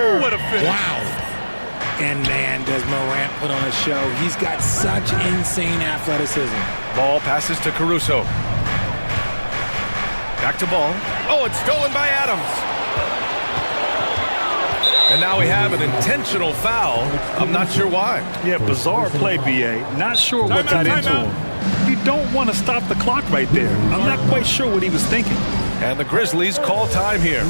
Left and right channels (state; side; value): inverted; both; correlation -1.00